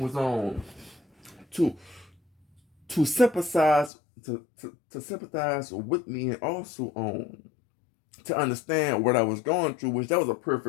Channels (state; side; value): drops out; right; at 3.9 s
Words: was on to to sympathize to sympathize with me, and also to understand what I was going through, which that was a